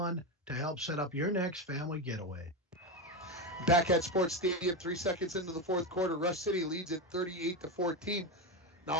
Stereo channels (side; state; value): both; normal; correlation 0.14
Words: to help set up your next family getaway. Back at Sports Stadium, 3 seconds into the fourth quarter, Rush City leads at 38-14.